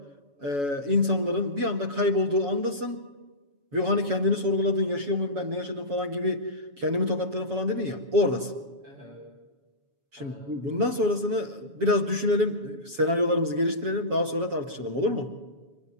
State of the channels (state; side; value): late; left; 7.1 ms